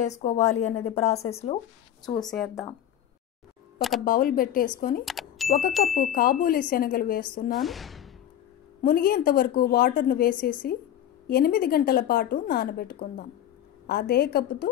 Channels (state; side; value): quieter; right; 10.9 dB